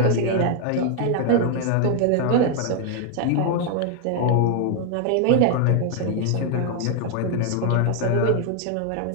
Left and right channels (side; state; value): both; different; correlation 0.00